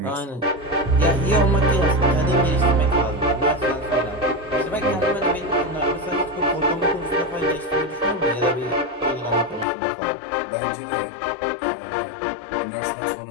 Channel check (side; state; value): right; drops out; at 9.7 s